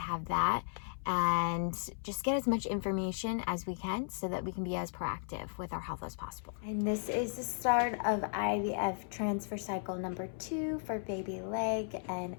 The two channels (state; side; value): silent; right; 54 dB below the other